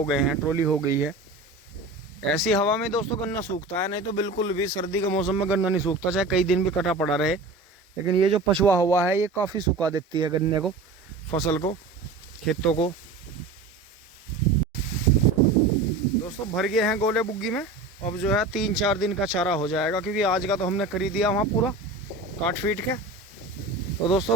गए हैं, ट्रॉली हो गई है। ऐसी हवा में दोस्तों गन्ना सूखता है, नहीं तो बिल्कुल भी सर्दी के मौसम में गन्ना नहीं सूखता, चाहे कई दिन भी कटा पड़ा रहे। लेकिन ये जो पछुआ हवा है, ये काफ़ी सुखा देती है गन्ने को, फसल को, खेतों को। दोस्तों भर गए हैं गोले बुग्गी में, अब जो है 3-4 दिन का चारा हो जाएगा, क्योंकि आज का तो हमने खरीद दिया वहाँ पूरा काट फीट के। तो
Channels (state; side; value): quieter; left; 3.3 dB